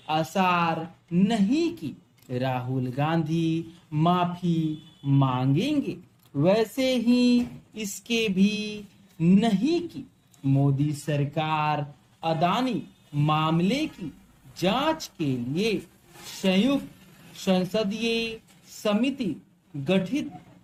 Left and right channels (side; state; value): both; identical; correlation 1.00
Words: आसार नहीं कि राहुल गांधी माफी मांगेंगे, वैसे ही इसके भी नहीं कि मोदी सरकार अदानी मामले की जांच के लिए संयुक्त संसदीय समिति गठित